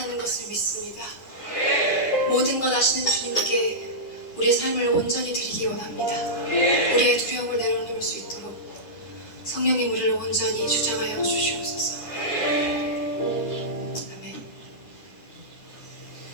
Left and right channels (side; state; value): right; late; 9.9 ms